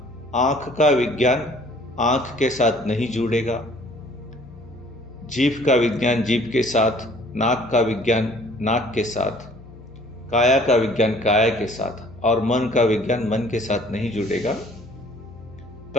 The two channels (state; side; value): noise; left; hum, 20 dB below the sound